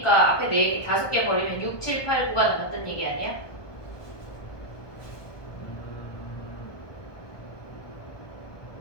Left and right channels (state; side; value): late; right; 1.2 ms